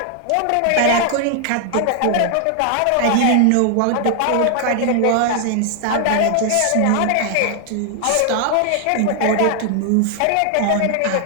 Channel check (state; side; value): different; both; correlation 0.00